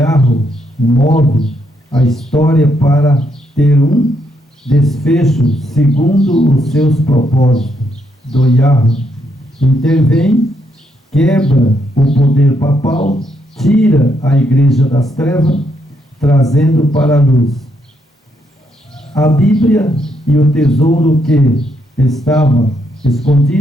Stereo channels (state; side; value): normal; both; correlation 0.76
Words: move a história para ter um desfecho segundo os seus propósitos, do Yahweh intervém, quebra o poder papal, tira a igreja das trevas, trazendo para a luz. A Bíblia e o tesouro que estava